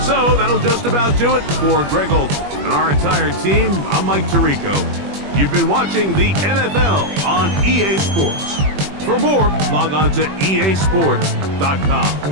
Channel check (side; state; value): left; late; 21 ms